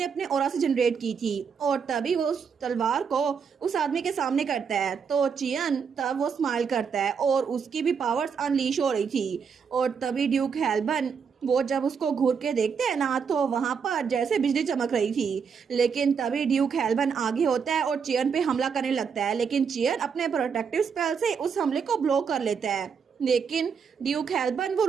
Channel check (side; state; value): left; quieter; 6.3 dB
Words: अपने ऑरा से जनरेट की थी, और तभी वो उस तलवार को उस आदमी के सामने करता है। तो चियन तब वो स्माइल करता है और उसकी भी पावर्स अनलीश हो रही थी। और तभी ड्यूक हेल्बन वो जब उसको घूर के देखते हैं ना, तो वहां पर जैसे बिजली चमक रही थी। लेकिन तभी ड्यूक हेल्बन आगे होता है और चियन पे हमला करने लगता है, लेकिन चियन अपने प्रोटेक्टिव स्पेल से उस हमले को ब्लॉक कर लेता है। लेकिन ड्यूक हेल्बन वो